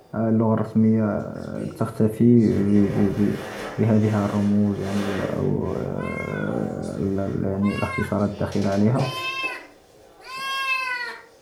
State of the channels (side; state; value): both; identical; correlation 1.00